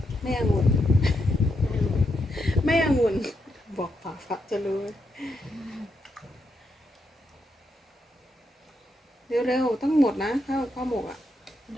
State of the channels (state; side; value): normal; both; correlation 0.82